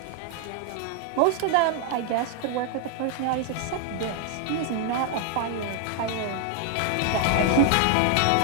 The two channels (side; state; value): both; different; correlation 0.00